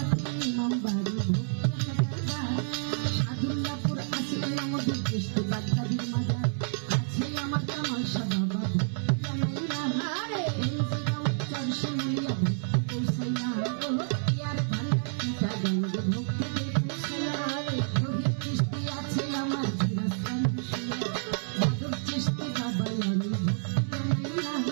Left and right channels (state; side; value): silent; left; 59 dB below the other